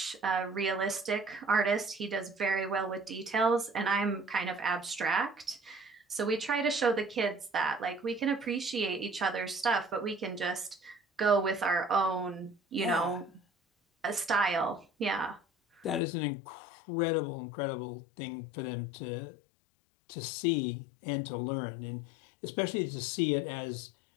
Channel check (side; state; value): right; drops out; at 16.0 s